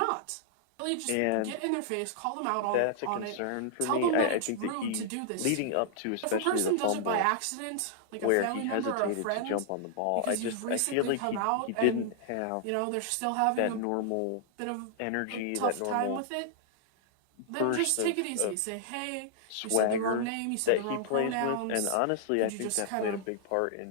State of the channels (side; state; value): both; different; correlation -0.01